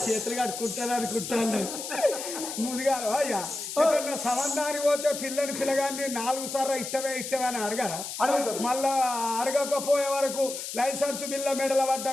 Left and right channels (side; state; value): left; noise; hiss, 7 dB below the sound